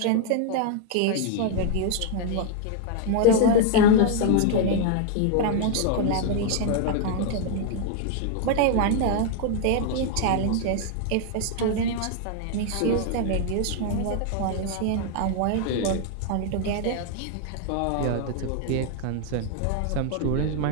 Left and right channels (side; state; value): both; different; correlation 0.00